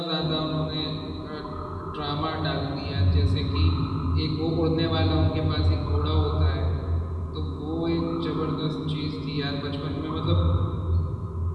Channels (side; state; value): both; identical; correlation 1.00